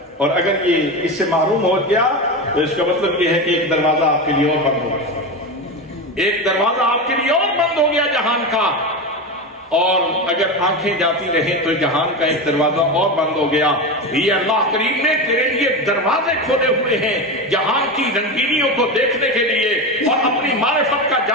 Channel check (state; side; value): normal; both; correlation 0.20